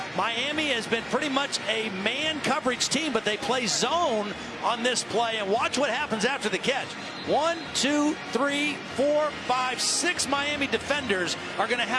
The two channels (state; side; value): identical; both; correlation 1.00